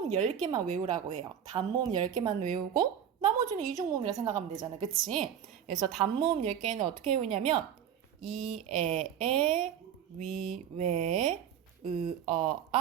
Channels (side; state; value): left; quieter; 9.2 dB